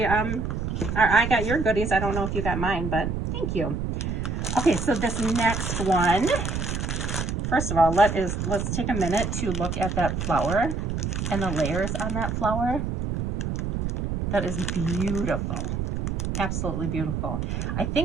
I got your goodies. I don't know if you got mine, but thank you. Okay, so this next one, first of all, let's take a minute to look at that flower and the layers on that flower. That is beautiful. Absolutely beautiful. I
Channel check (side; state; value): right; noise; rumble, 2 dB below the sound